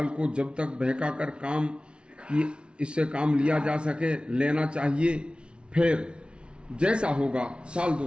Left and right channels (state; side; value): late; left; 0.057 ms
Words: को जब तक बहका कर काम की इससे काम लिया जा सके लेना चाहिए। फिर जैसा होगा साल